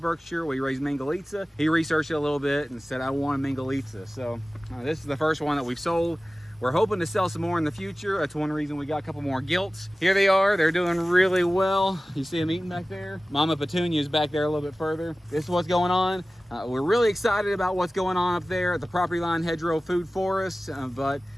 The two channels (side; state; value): both; normal; correlation 0.96